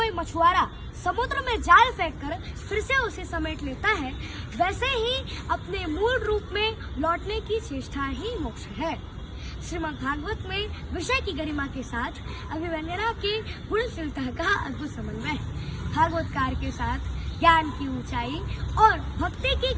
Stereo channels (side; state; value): both; identical; correlation 1.00